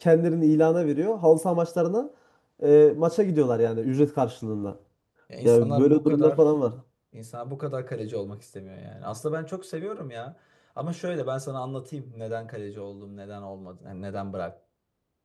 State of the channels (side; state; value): both; identical; correlation 1.00